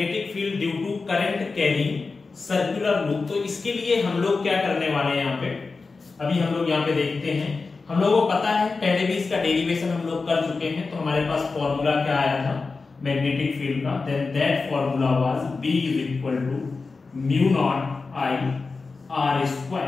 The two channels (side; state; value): right; quieter; 4.2 dB